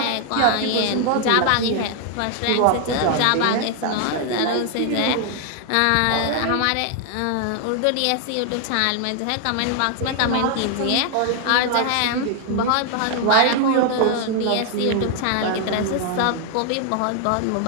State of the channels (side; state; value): both; different; correlation 0.00